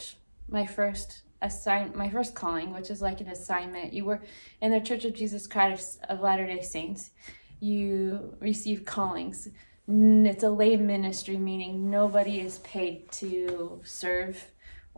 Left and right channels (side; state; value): both; inverted; correlation -1.00